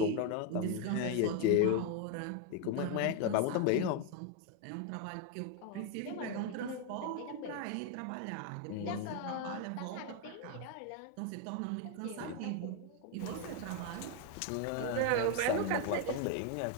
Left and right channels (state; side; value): different; both; correlation 0.01